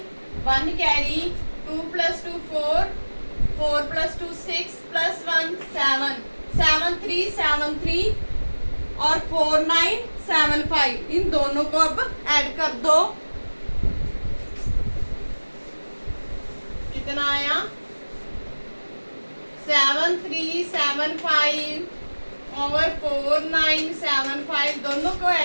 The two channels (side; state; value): both; inverted; correlation -1.00